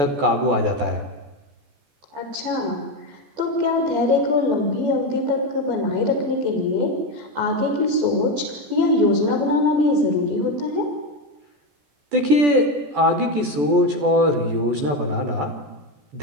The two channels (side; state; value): left; late; 14 ms